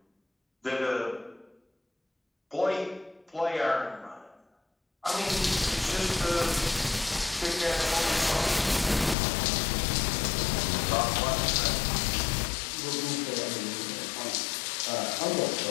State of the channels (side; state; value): right; drops out; at 9.2 s